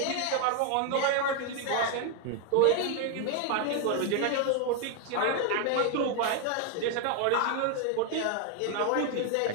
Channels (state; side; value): different; both; correlation 0.01